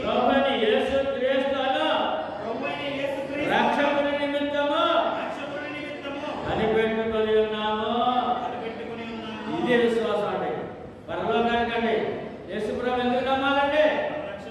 ప్రభువైన యేసు క్రీస్తును రక్షకుని నిమిత్తము కనిపెట్టుకొని ఉన్నాము. ఇదే విశ్వాసం అండి. పరలోకానికండి యేసు ప్రభు ఎందుకు నమ్మాలండి?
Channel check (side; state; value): both; identical; correlation 1.00